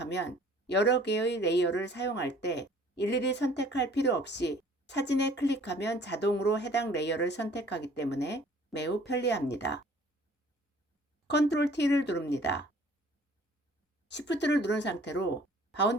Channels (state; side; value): normal; both; correlation 0.53